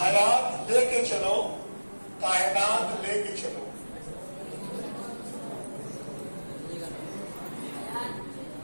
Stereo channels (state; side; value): inverted; both; correlation -1.00